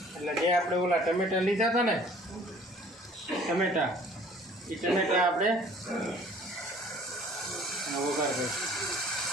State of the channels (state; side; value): normal; both; correlation 0.53